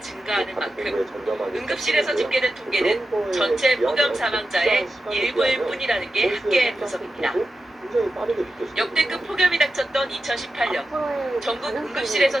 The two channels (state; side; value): normal; both; correlation 0.91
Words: 증가하는 만큼 응급실에서 집계된 통계는 전체 폭염 사망자의 일부일 뿐이라는 게 학계의 분석입니다. 역대급 폭염이 닥쳤던 2018년 전국